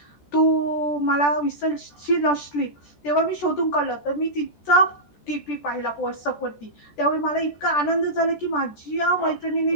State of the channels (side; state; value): right; late; 14 ms